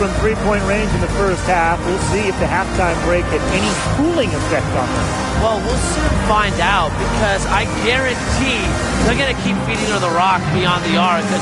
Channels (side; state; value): both; identical; correlation 1.00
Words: three-point range in the first half. We'll see if the halftime break had any cooling effect on her. Well, we'll soon find out, because I guarantee they're going to keep feeding her the rock beyond the arc